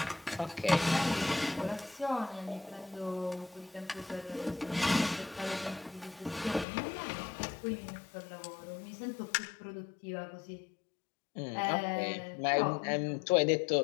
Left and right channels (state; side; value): drops out; right; at 6.7 s